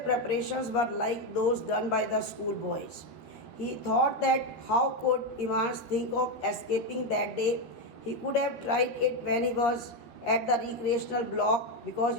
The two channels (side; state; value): right; late; 13 ms